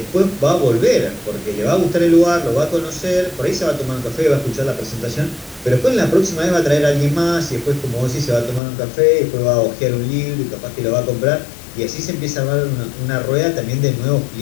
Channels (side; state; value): right; drops out; at 8.6 s